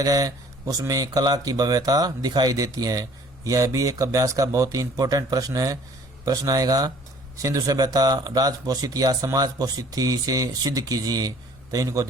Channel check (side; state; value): both; normal; correlation 0.53